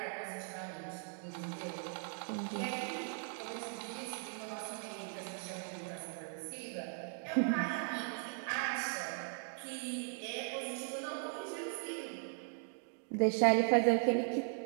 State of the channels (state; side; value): silent; left; 52 dB below the other